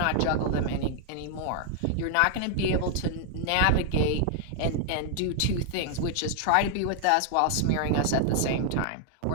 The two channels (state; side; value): different; both; correlation 0.00